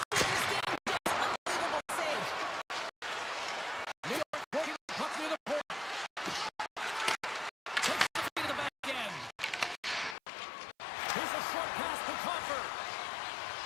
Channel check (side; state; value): right; drops out; at 10.2 s